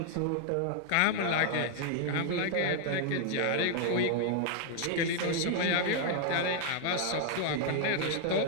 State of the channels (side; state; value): both; different; correlation 0.00